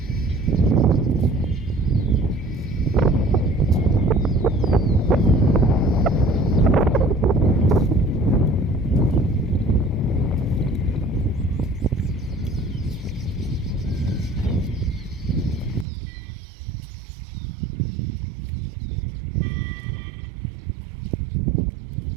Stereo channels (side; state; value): left; drops out; at 15.9 s